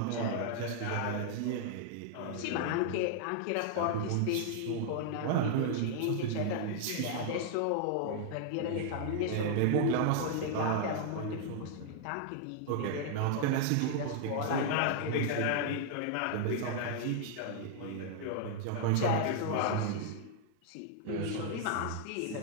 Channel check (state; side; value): different; both; correlation 0.00